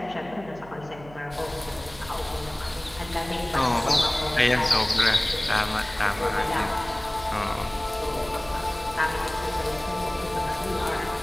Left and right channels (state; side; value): noise; right; hum, 19 dB below the sound